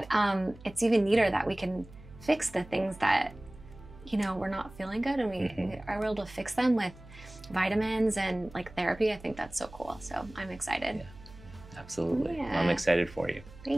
it's even neater that we can fix the things that, we're not feeling good, and we are able to fix them with vitamins and like therapy. I think that's so cool. So I'm excited. Absolutely. I'm excited for you.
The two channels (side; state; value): right; noise; hum, 19 dB below the sound